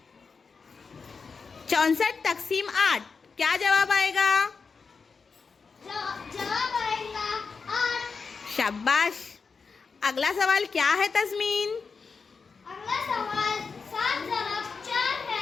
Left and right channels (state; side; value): quieter; right; 5.0 dB